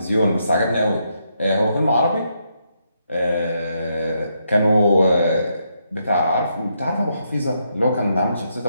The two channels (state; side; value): inverted; both; correlation -0.79